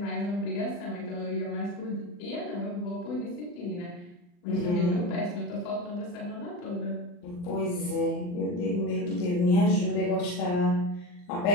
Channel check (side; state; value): right; late; 40 ms